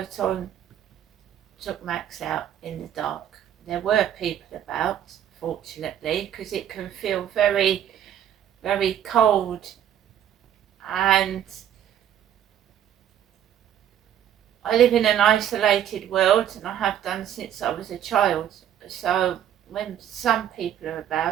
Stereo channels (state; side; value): quieter; left; 10.3 dB